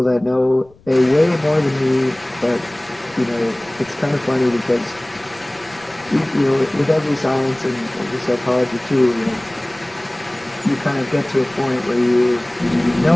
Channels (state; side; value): noise; left; rumble, 28 dB below the sound